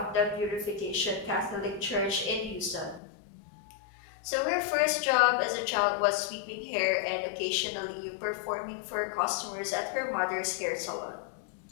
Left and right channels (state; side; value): drops out; right; at 3.0 s